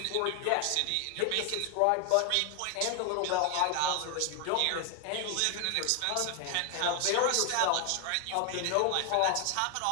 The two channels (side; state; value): both; different; correlation 0.00